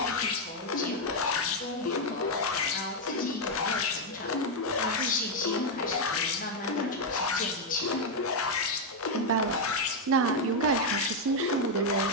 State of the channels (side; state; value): both; normal; correlation 0.01